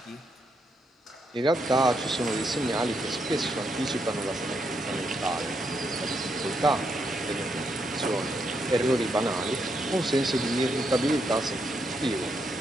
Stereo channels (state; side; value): normal; both; correlation 0.79